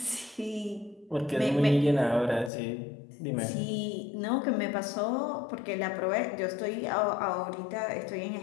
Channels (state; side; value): drops out; right; at 2.5 s